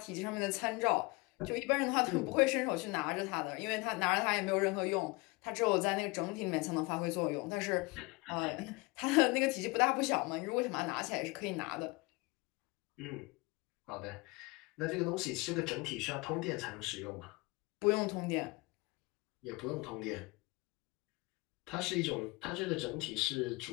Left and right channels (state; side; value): quieter; right; 25.5 dB